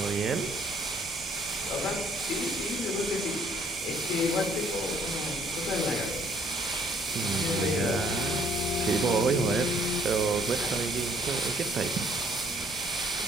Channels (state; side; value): normal; both; correlation 0.62